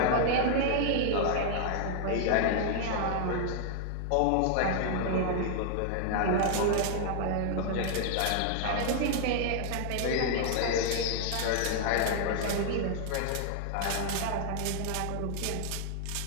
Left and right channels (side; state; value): both; different; correlation 0.00